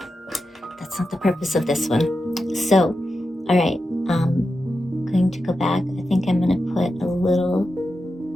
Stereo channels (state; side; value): normal; both; correlation 0.90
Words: that's not the purpose of this one. So, all right, I'm going to go back. I think I'm going to put a little